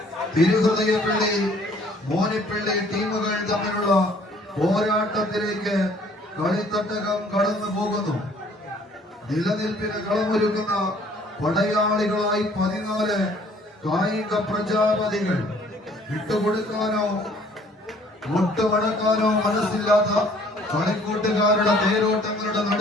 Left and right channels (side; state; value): both; normal; correlation 0.58